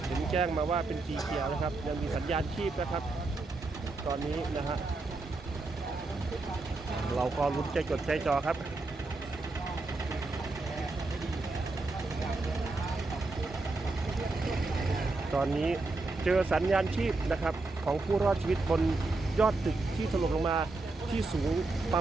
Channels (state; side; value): quieter; left; 3.3 dB